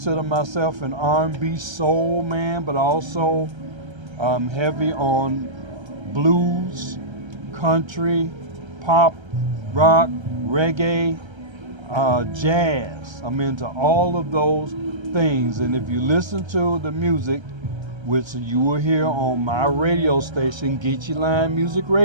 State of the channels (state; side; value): late; left; 1.3 ms